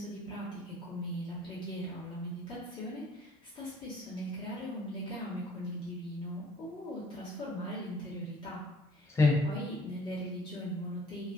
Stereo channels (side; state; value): both; normal; correlation 0.56